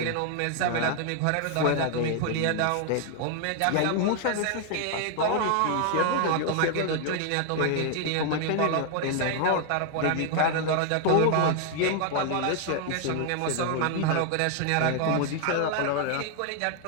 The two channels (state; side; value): different; both; correlation 0.00